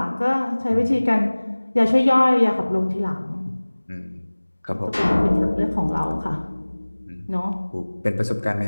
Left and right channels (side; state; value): both; inverted; correlation -1.00